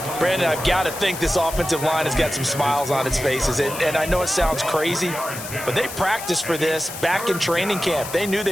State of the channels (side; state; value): left; noise; hiss, 10 dB below the sound